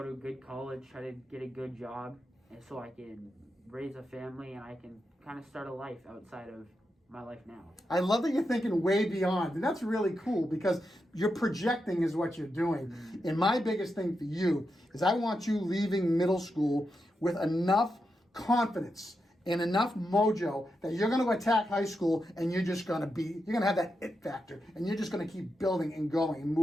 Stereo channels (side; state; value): both; normal; correlation 0.86